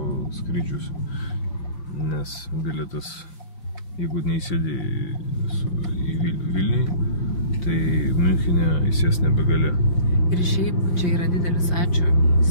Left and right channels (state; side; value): late; right; 5.2 ms